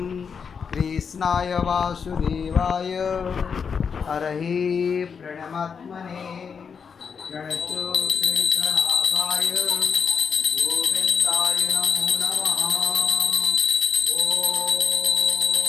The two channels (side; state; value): right; quieter; 6.2 dB